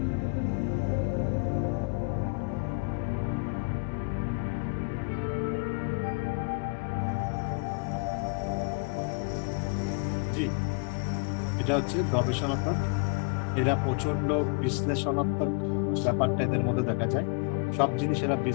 জি, এটা হচ্ছে গবেষণাত্মক। এরা প্রচন্ড বিশ্লেষণাত্মক ব্যাপারটা এদের মধ্যে দেখা যায়। সব জিনিস এরা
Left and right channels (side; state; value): right; quieter; 34.5 dB